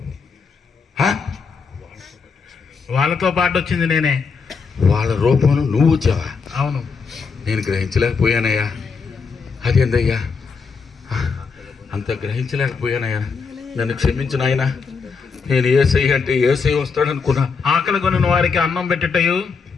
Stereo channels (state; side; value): quieter; right; 5.2 dB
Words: వాళ్ళతో పాటు వచ్చింది నేనే. వాళ్ళ రూపంలో నువ్వు వచ్చావా? అవును. నేను గ్రహించలేకపోయానయ్యా. అదేందయ్యా అంత గ్రహించలేకపోయానయ్యా. నన్ను క్షమించు నాయనా. నేను ఏసై అంటే ఏసై వస్తాడనుకున్నా. ఆకలి కొనిన వారికి అన్నం పెట్టుటయు,